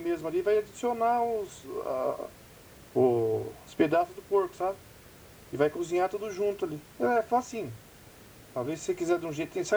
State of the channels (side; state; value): both; identical; correlation 1.00